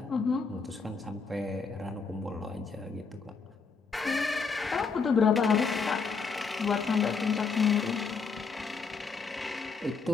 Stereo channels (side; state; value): right; quieter; 5.0 dB